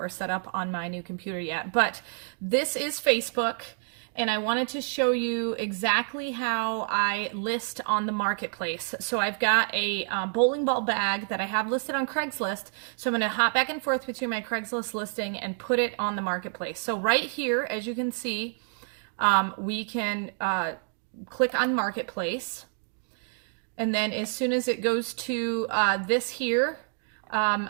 set up on my new computer yet. But this is Facebook, and I wanted to show you exactly how I list on the marketplace. So I've got a bowling ball bag that I have listed on Craigslist. So I'm going to hop back and forth between my Craigslist listing and put it on the marketplace. So right here, as you can see, we can click on Marketplace. And then as soon as it goes to this here,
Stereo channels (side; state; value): left; silent; 59 dB below the other